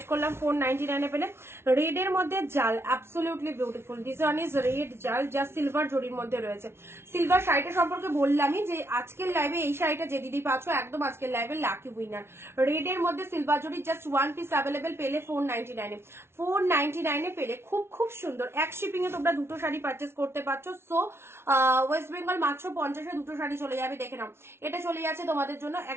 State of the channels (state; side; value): late; left; 0.12 ms